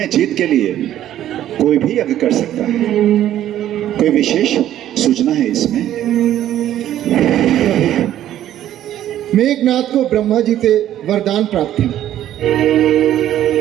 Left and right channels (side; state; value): left; quieter; 12.1 dB